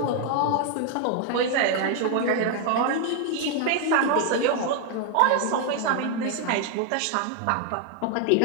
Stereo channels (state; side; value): different; both; correlation 0.00